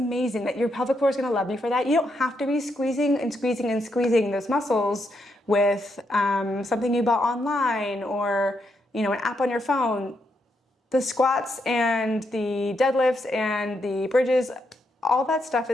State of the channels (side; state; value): both; normal; correlation 0.80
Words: that your pelvic floor is going to love you for that. You don't have to be squeezing and squeezing and squeezing those muscles with something you bought online or, you know, an app on your phone. The squats and the deadlifts and the bridges, all that stuff